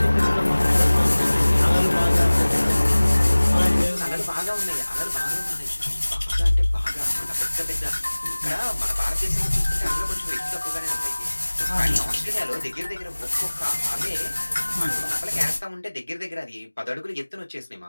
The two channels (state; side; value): inverted; both; correlation -1.00